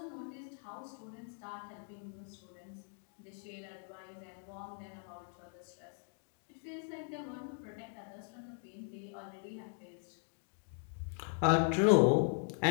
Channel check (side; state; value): right; silent; 52 dB below the other